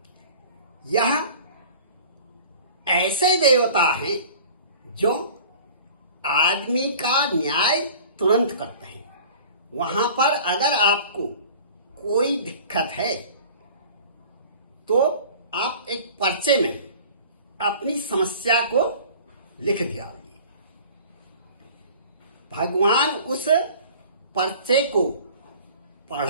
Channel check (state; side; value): inverted; both; correlation -0.44